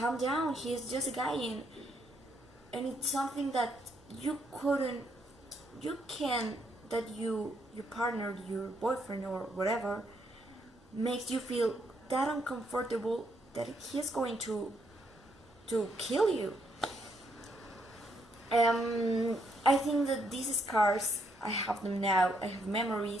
down. He's just a guy, and it's something that your partner, your boyfriend or whatever, makes you feel that uncomfortable that he's going to kill you. I think that these scars, I have them now. I have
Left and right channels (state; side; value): normal; both; correlation 0.74